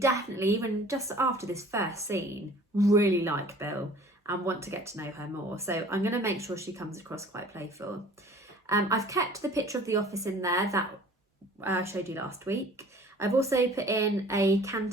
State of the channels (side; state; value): both; normal; correlation 0.49